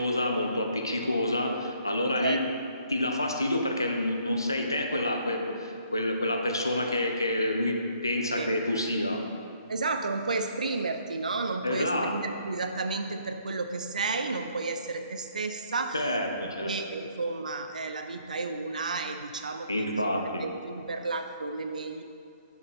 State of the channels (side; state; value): both; inverted; correlation -0.66